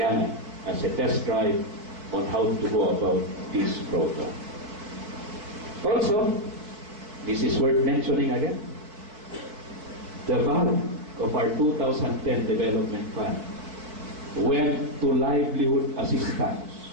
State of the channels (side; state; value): left; late; 4.6 ms